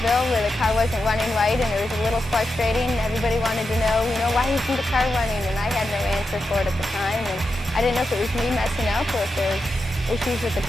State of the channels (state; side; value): normal; both; correlation 0.88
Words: where the car wasn't running right, and it was a little frustrating. Everybody wanted to know, why isn't the car running? And I had no answer for it at the time, and I didn't know if it was me messing up or if there was issues with the